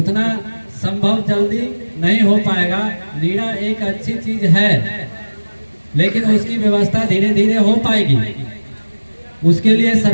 संभव जल्दी नहीं हो पाएगा। नीरा एक अच्छी चीज है, लेकिन उसकी व्यवस्था धीरे धीरे हो पाएगी। उसके लिए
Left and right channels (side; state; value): both; inverted; correlation -1.00